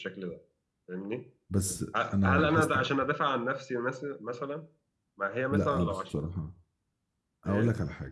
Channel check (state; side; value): identical; both; correlation 1.00